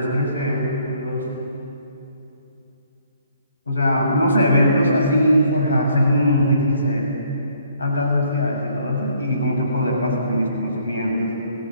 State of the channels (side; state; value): both; inverted; correlation -0.65